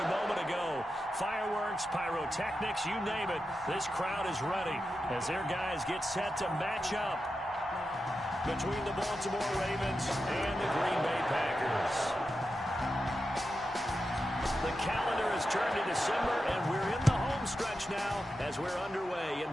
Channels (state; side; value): normal; both; correlation 0.90